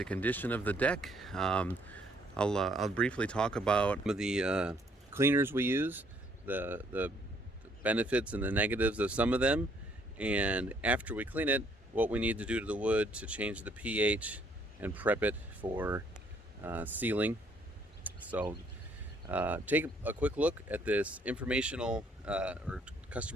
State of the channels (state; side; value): normal; both; correlation 0.66